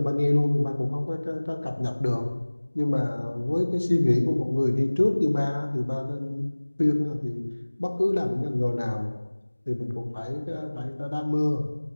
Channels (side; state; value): both; inverted; correlation -1.00